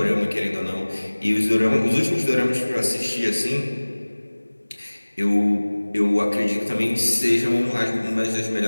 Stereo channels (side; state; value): both; inverted; correlation -1.00